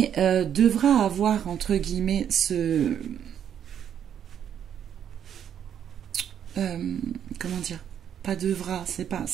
devra avoir entre guillemets ce... comment dire? Pas devra, c'est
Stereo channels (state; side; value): quieter; left; 9.1 dB